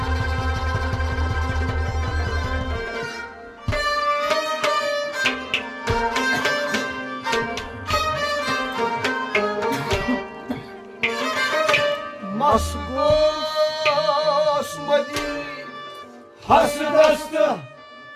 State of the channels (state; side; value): identical; both; correlation 1.00